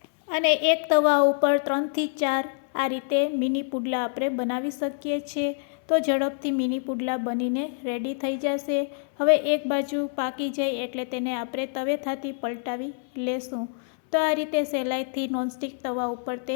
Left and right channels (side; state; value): right; silent; 61 dB below the other